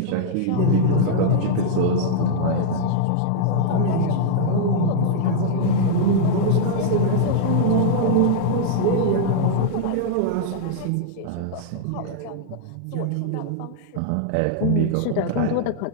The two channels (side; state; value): both; different; correlation -0.01